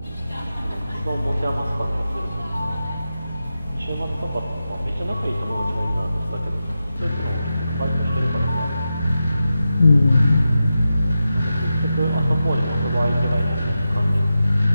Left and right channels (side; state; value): both; inverted; correlation -0.90